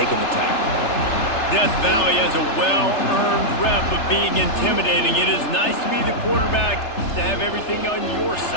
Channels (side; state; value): right; late; 3.3 ms